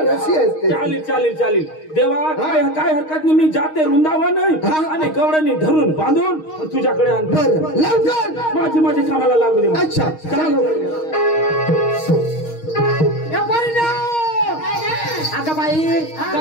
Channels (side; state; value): right; late; 6.4 ms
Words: रस्सी असते चालेल चालेल चालेल देवा काय काय हरकत नाही मी जाते वृंदावन आणि गवळणी धरून बांधून तुझ्याकडे आणतो बरं लवकर माझी कामाला लागू दे अच्छा चालू अगं बाई